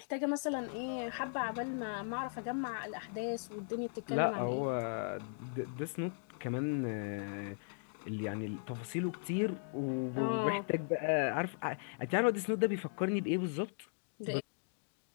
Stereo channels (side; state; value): right; silent; digital silence